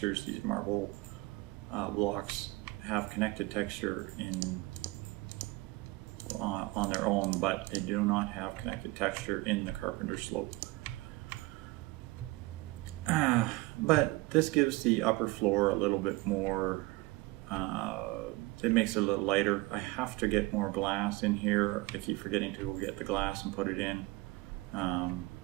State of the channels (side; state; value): left; quieter; 21.5 dB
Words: These marble blocks have connected texture on their own, but they do not have connected texture in the carpenter slope. But this gives the upper floor a little bit more, it makes it a little lighter. I have to get more glass in here. I keep forgetting to go get the glass and put it in. I'm